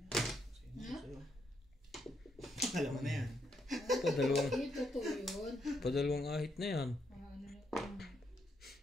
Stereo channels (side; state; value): both; normal; correlation 0.77